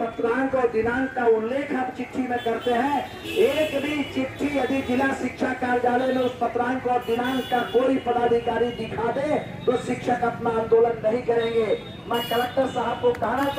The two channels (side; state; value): both; identical; correlation 1.00